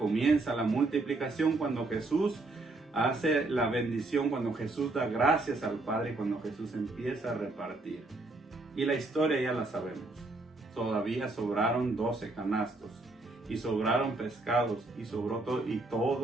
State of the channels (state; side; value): quieter; left; 3.1 dB